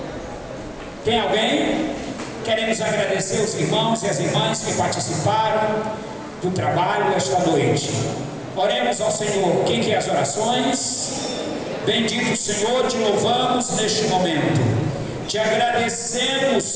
Tem alguém? Queremos agradecer os irmãos e as irmãs que participaram do trabalho esta noite. Oremos ao Senhor. Quem quer as orações? Bendito Senhor, te louvamos neste momento. Te agradecemos,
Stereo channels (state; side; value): identical; both; correlation 1.00